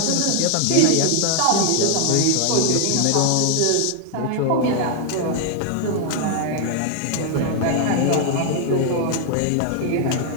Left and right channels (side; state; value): both; different; correlation 0.00